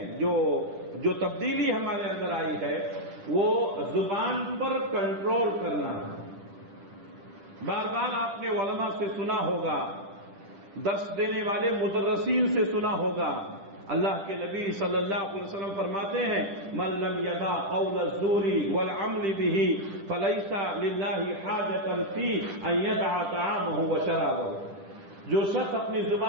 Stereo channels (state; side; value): late; left; 10 ms